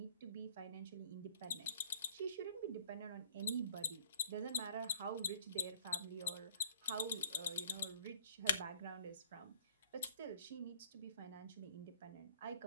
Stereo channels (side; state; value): both; inverted; correlation -0.54